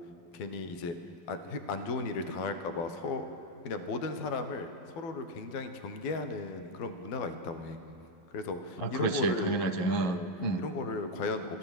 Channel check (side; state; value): right; late; 11 ms